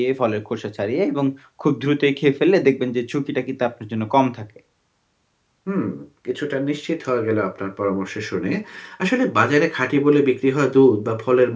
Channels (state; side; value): identical; both; correlation 1.00